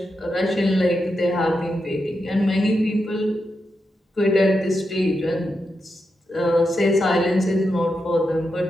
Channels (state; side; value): normal; both; correlation 0.86